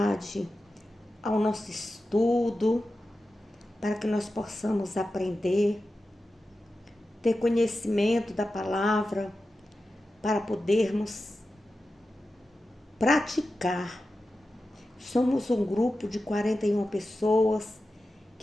ao nosso estudo para que nós possamos aprender, ter conhecimento da palavra para podermos praticar. Somos um grupo de 41 pessoas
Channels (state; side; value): normal; both; correlation 0.92